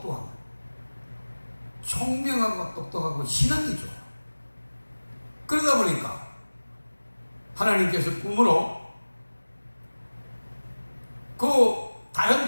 거예요. 총명하고 똑똑하고 신앙이 좋아요. 그러다 보니까 하나님께서 꿈으로 그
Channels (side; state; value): both; inverted; correlation -1.00